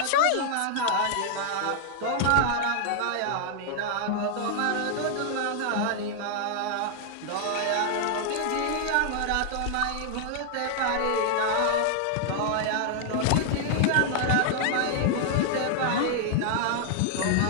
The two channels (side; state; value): both; different; correlation 0.00